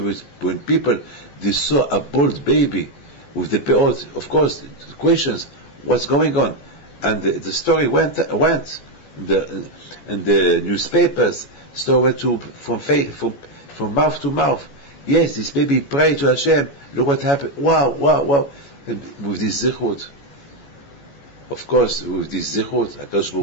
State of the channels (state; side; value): late; right; 14 ms